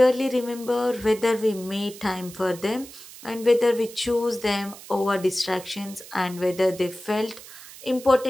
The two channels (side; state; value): right; noise; hiss, 17 dB below the sound